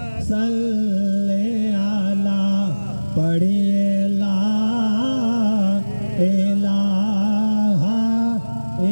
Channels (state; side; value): inverted; both; correlation -1.00